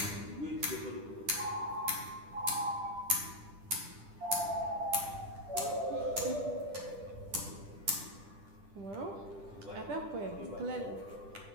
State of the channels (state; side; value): late; left; 10 ms